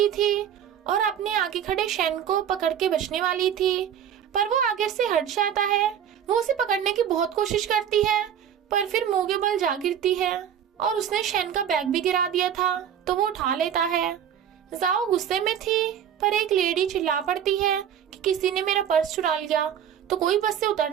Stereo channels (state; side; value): quieter; left; 9.1 dB